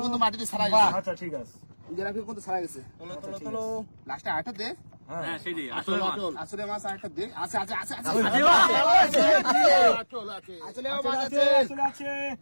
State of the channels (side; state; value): both; inverted; correlation -1.00